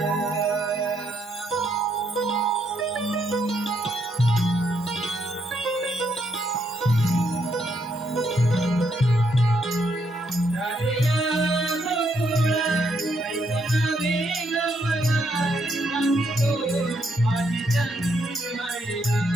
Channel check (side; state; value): both; normal; correlation 0.75